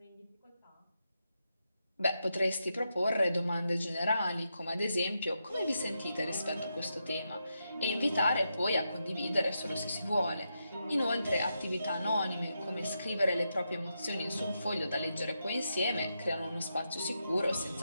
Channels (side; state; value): both; inverted; correlation -0.85